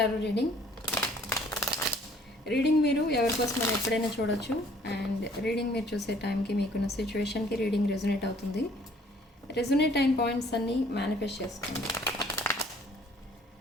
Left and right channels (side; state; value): both; normal; correlation 0.58